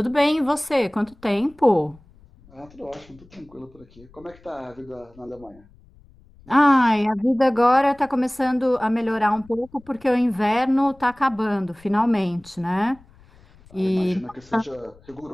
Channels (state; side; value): noise; left; rumble, 26 dB below the sound